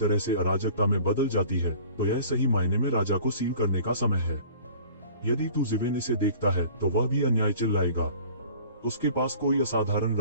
से अराजकता में बदल जाती है, तो यह सही मायने में राजा को सील करने का समय है। यदि तू ज़िवेन इसे देखता है तो वह भी अन्याय चिल्लाएगा। उसके पास कोई असाधारण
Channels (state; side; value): inverted; both; correlation -0.47